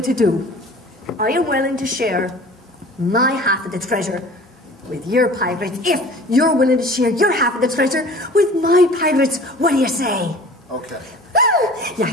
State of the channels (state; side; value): normal; both; correlation 0.44